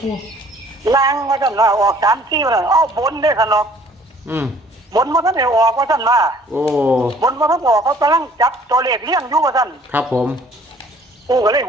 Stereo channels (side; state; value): both; normal; correlation 0.56